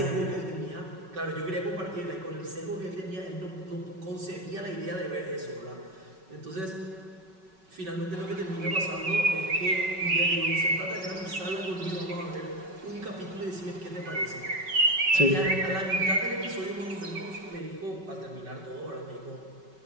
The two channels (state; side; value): late; left; 5.3 ms